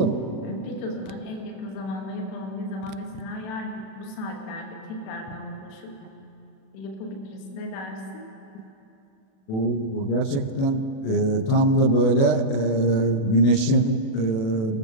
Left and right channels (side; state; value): right; late; 37 ms